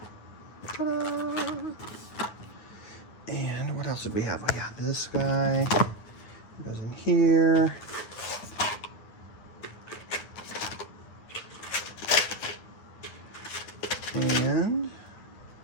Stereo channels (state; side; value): late; right; 9.4 ms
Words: ta-da! And what else did we have? We got this guy. Goes in here. And